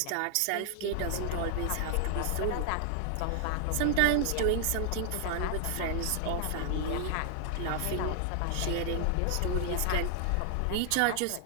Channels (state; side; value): different; both; correlation 0.00